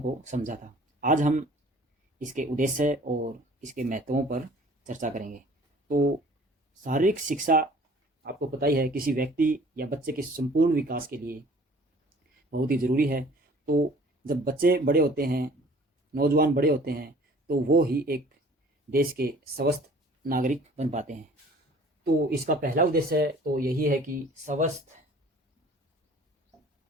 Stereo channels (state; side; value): normal; both; correlation 0.51